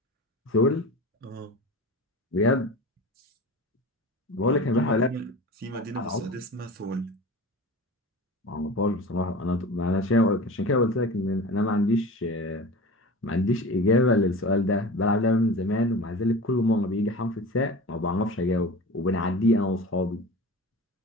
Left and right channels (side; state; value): both; normal; correlation 0.34